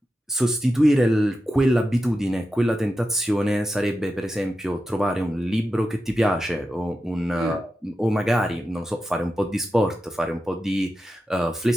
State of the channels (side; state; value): both; normal; correlation 0.90